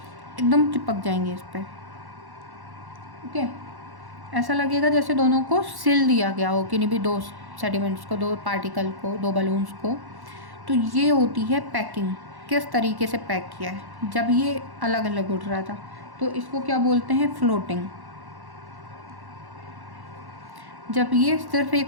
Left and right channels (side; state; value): left; late; 1.1 ms